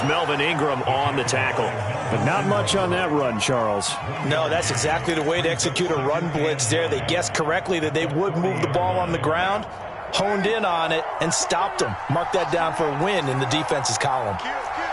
Melvin Ingram on the tackle. But not much on that run, Charles. No, that's exactly the way to execute a run blitz there. They guessed correctly that they would move the ball on the ground, honed in on it, and stopped them. Mark that down for a win in the defense's column.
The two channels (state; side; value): identical; both; correlation 1.00